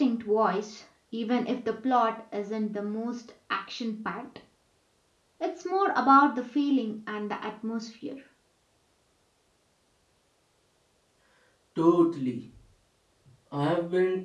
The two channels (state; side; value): identical; both; correlation 1.00